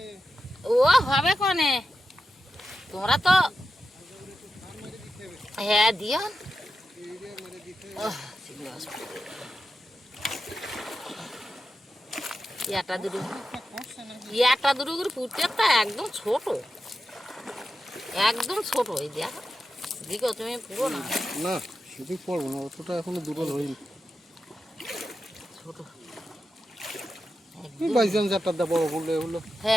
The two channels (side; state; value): both; normal; correlation 0.90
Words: ও হবে কনে তোমরা তো হ্যাঁ দিও ইয়াটা দুটো করে ফুটছে তা একদম ছোট এই দেখ দিকে তুমি পুরো না না সেদিক পড়বো না অতটা এখনো দুটো ধরিনি ছোট বাইজান চারটা দা বড় বললে হলো